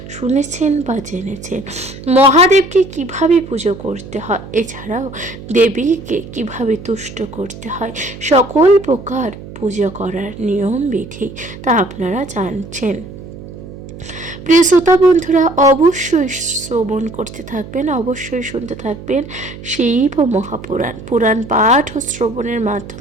শুনেছেন বা জেনেছেন। মহাদেবকে কিভাবে পুজো করতে হয়, এছাড়াও দেবীকে কিভাবে তুষ্ট করতে হয়, সকল প্রকার পুজো করার নিয়ম বিধি তা আপনারা জানছেন। প্রিয় শ্রোতা বন্ধুরা, অবশ্যই শ্রবণ করতে থাকবেন, অবশ্যই শুনতে থাকবেন শিব মহাপুরাণ। পুরাণ পাঠ ও শ্রবণের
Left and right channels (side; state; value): right; noise; hum, 14 dB below the sound